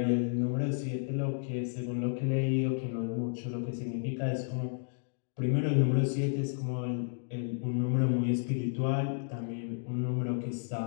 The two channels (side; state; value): right; silent; digital silence